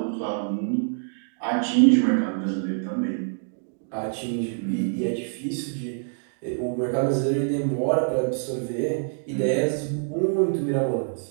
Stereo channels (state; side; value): silent; left; digital silence